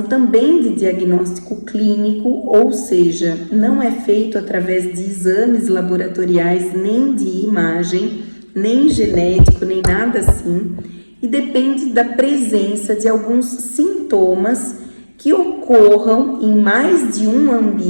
também de diagnóstico clínico, ou seja, não é feito através de exames laboratoriais, nem de imagem, nem genético, nem nada assim, e depende da presença de alguns sintomas que ocorram em mais de um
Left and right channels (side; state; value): both; inverted; correlation -1.00